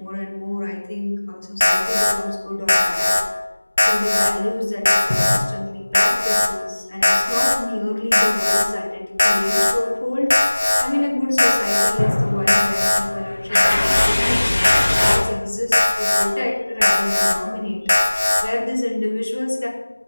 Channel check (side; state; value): both; inverted; correlation -1.00